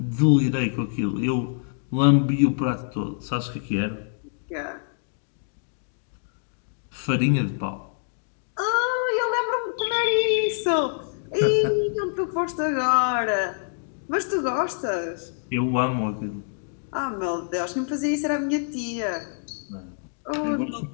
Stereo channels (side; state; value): right; silent; digital silence